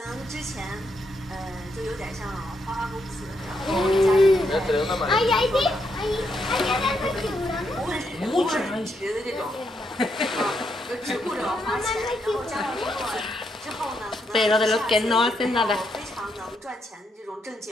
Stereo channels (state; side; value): normal; both; correlation 0.79